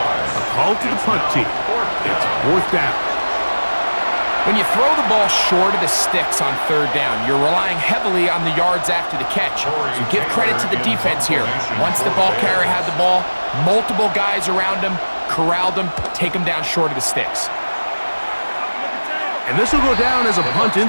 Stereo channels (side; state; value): both; inverted; correlation -1.00